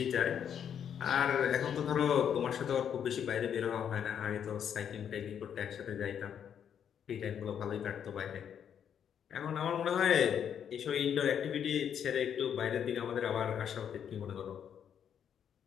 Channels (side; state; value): right; quieter; 8.5 dB